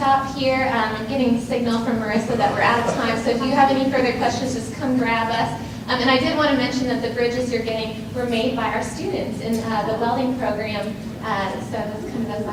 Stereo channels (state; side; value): identical; both; correlation 1.00